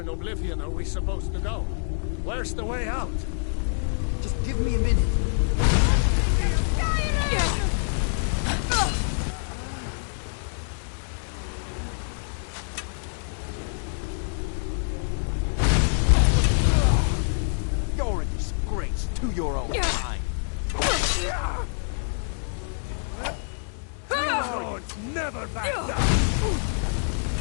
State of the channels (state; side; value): silent; right; digital silence